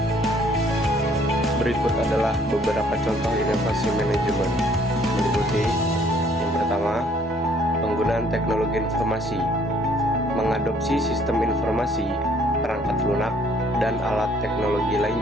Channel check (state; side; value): normal; both; correlation 0.61